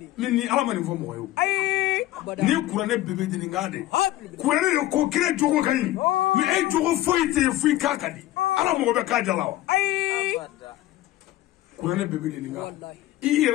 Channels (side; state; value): right; quieter; 15.3 dB